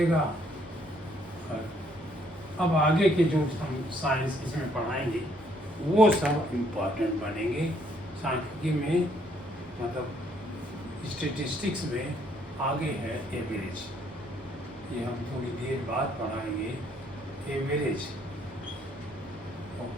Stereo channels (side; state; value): both; normal; correlation 0.67